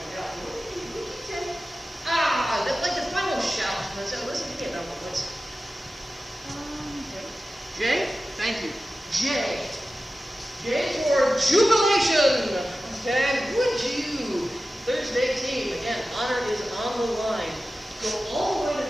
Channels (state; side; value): normal; both; correlation 0.94